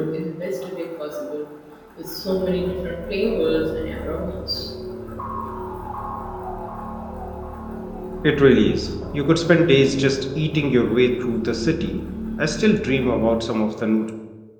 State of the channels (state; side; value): identical; both; correlation 1.00